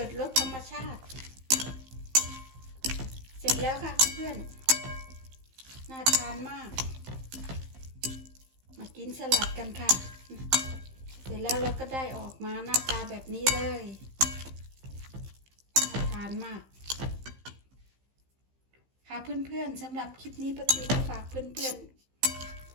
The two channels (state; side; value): late; left; 15 ms